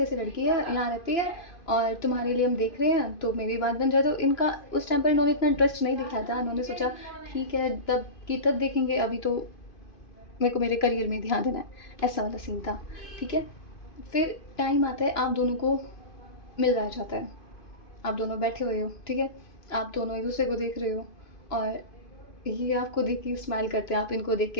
लड़की है, यहाँ रहती है और तुम्हारे लिए हम देख रहे हैं, तो मेरी बात बन जाए। तो इनका उस टाइम पर इन्होंने इतना इंटरेस्ट नहीं दिखाया था, इन्होंने सोचा ठीक है तब की तब देखेंगे, अभी तो मेरे को मेरे करियर में ध्यान देना है, ऐसा वाला सीन था, ठीक है। फिर टाइम आता है, आप दोनों को मिल जाता है, आप दोनों बैठे हुए हो, ठीक है। आप दोनों एक दूसरे को देख रहे हो, और ये आपको देख के स्माइल करते हैं, आप इनको देख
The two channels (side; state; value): right; late; 2.5 ms